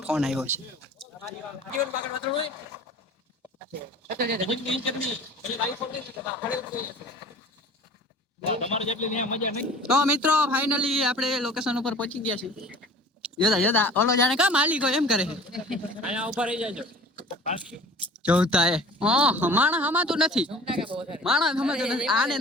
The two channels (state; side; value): normal; both; correlation 0.44